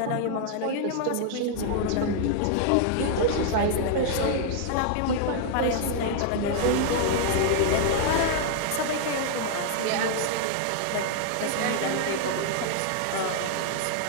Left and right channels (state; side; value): different; both; correlation 0.00